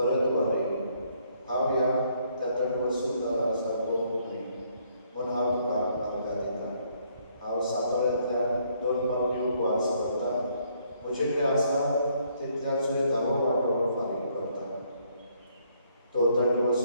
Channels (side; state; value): both; inverted; correlation -0.68